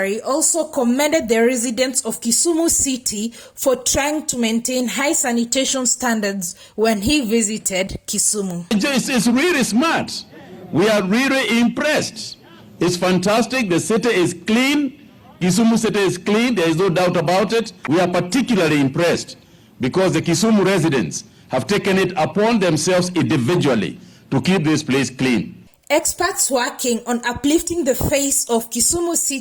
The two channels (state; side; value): identical; both; correlation 1.00